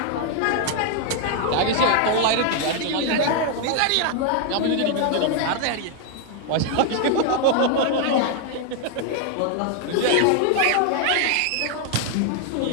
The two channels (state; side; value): different; both; correlation 0.00